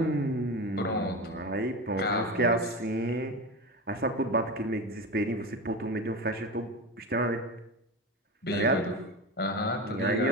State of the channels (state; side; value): normal; both; correlation 0.23